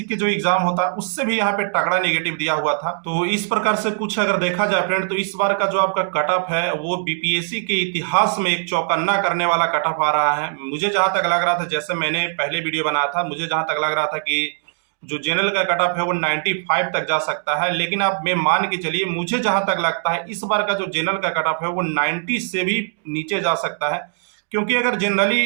के जो एग्जाम होता है उससे भी यहाँ पे तगड़ा नेगेटिव दिया हुआ था। तो इस प्रकार से कुछ अगर देखा जाए फ्रेंड, तो इस बार का जो आपका कट ऑफ है वो बीपीएससी के इतिहास में एक चौकन्ना करने वाला कट ऑफ आ रहा है। मुझे जहां तक लग रहा था, जैसे मैंने पहले वीडियो बनाया था, मुझे जहां तक लग रहा था कि जो जनरल का कट ऑफ है वो 95 तक जा सकता है, लेकिन आप मैं मान के चलिए, मुझे जहां तक लगता है इस बार का जो जनरल का कट ऑफ है वो 90 से भी नीचे जा सकता है। क्योंकि अगर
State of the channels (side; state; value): left; silent; digital silence